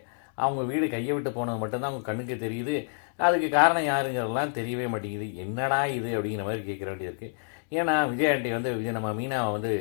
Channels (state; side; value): silent; right; digital silence